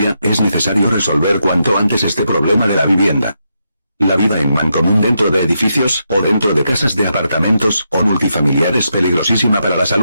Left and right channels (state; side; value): inverted; both; correlation -0.83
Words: es necesario resolver cuanto antes este problema de la vivienda. La vida en mancomún dentro de edificios, o dentro de casas de apartamentos, o multifamiliar es peligrosísima para la